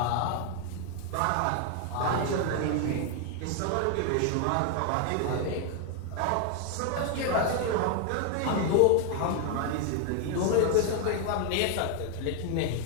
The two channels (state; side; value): different; both; correlation 0.00